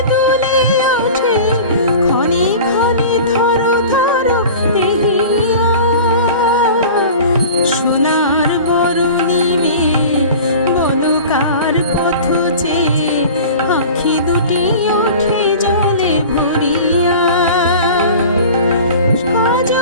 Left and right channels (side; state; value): both; inverted; correlation -0.39